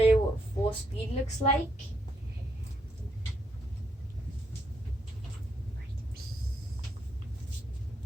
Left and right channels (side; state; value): both; normal; correlation 0.76